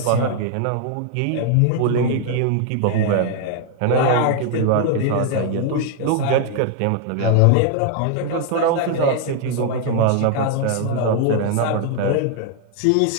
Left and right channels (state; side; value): different; both; correlation 0.00